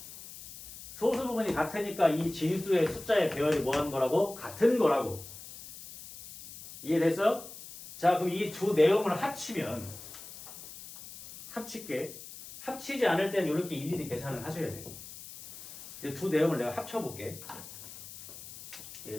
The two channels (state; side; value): noise; left; hiss, 14 dB below the sound